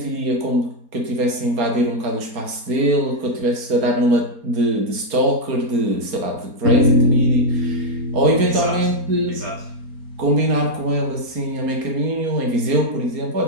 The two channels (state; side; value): late; left; 4.3 ms